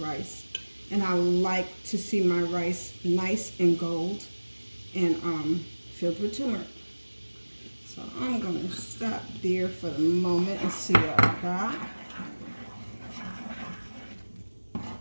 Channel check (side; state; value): both; inverted; correlation -1.00